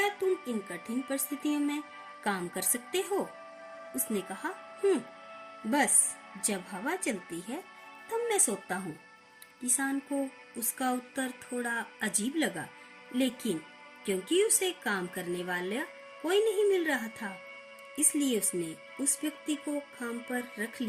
तुम इन कठिन परिस्थितियों में काम कर सकते हो? उसने कहा, बस जब हवा चलती है तब मैं सोता हूँ। किसान को उसका उत्तर थोड़ा अजीब लगा, लेकिन क्योंकि उसे काम करने वाला कोई नहीं मिल रहा था, इसलिए उसने उस व्यक्ति को काम पर रख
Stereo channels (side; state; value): both; identical; correlation 1.00